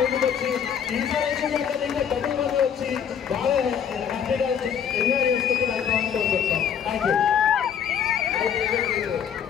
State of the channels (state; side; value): quieter; right; 8.1 dB